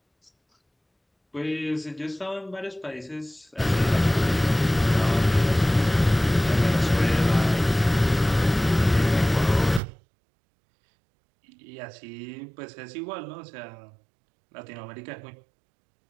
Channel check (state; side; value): drops out; left; at 9.8 s